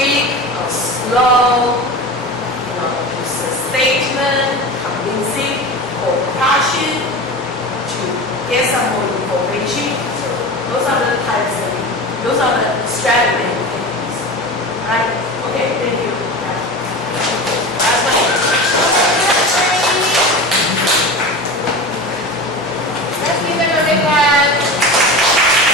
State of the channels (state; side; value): normal; both; correlation 0.29